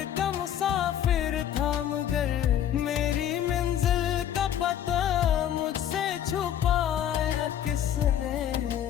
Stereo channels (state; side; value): quieter; right; 10.3 dB